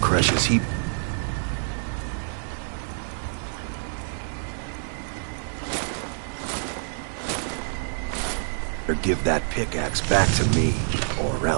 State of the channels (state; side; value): silent; left; digital silence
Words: he... Or give that pickaxe back to me, or